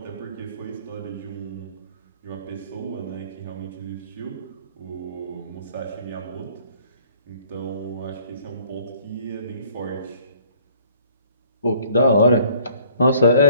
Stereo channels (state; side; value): inverted; both; correlation -0.58